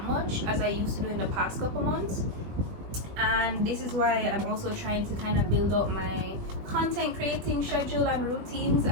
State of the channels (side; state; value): left; late; 20 ms